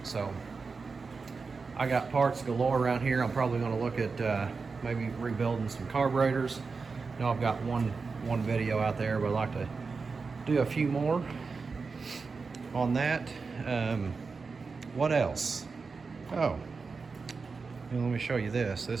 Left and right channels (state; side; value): quieter; left; 4.6 dB